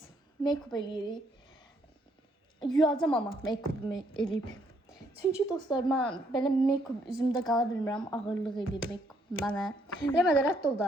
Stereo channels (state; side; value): normal; both; correlation 0.70